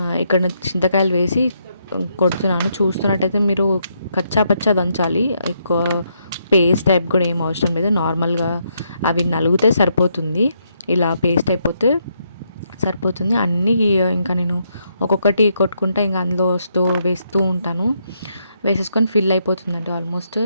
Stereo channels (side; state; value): both; inverted; correlation -0.77